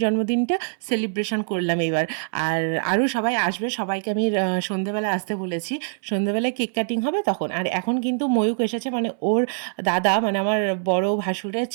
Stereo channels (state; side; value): silent; left; 60 dB below the other